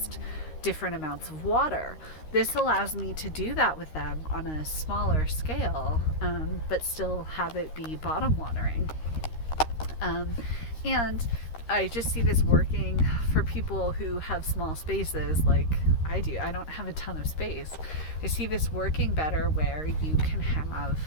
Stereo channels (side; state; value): right; late; 13 ms